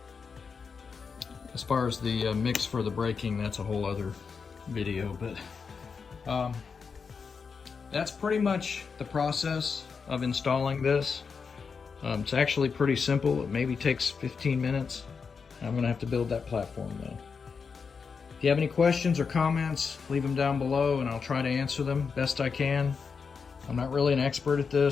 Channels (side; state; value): right; quieter; 5.5 dB